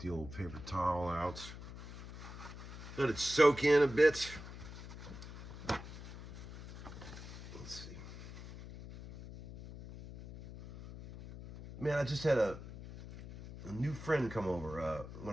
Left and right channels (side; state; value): left; noise; hum, 12 dB below the sound